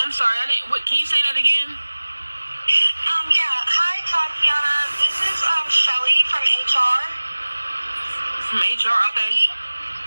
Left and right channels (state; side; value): inverted; both; correlation -1.00